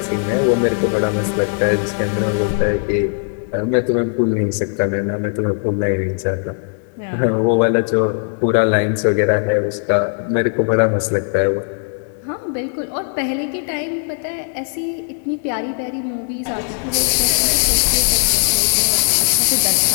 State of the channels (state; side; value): silent; right; 61 dB below the other